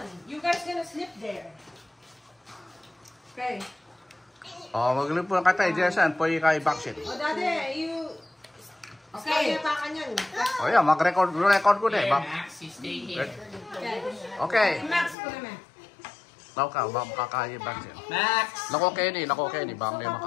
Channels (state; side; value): drops out; right; at 15.2 s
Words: You guys gonna sleep there. Okay. Oh, maglip po ka tayo, Jason. Pwede kayo backseat. O, Daddy, you... Okay. Kaya pa kanyan. Oh, yeah, mag-record ko na eh. Max, you stay here. Okay. Max ko naman. Tao ka, makakaya backseat. Max! Nako, Kenny. Baka may